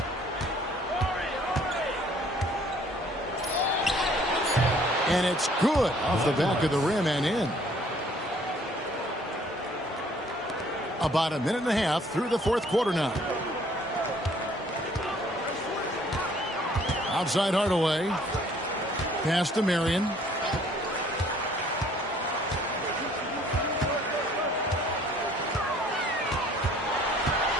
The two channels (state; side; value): normal; both; correlation 0.59